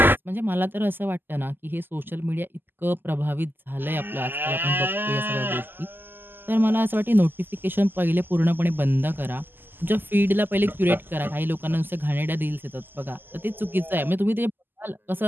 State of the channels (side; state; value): left; late; 0.094 ms